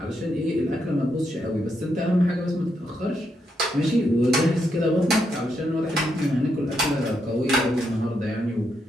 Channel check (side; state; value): both; normal; correlation 0.80